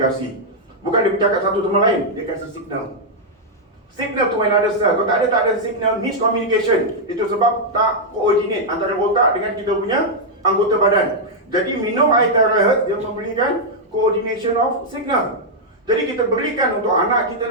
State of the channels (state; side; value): normal; both; correlation -0.04